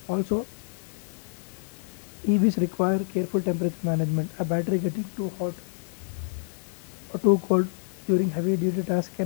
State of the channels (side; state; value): right; silent; 60 dB below the other